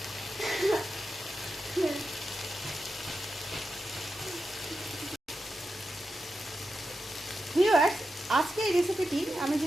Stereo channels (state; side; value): normal; both; correlation 0.89